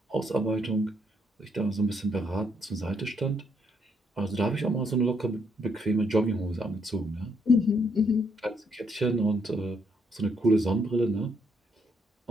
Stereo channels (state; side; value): normal; both; correlation 0.73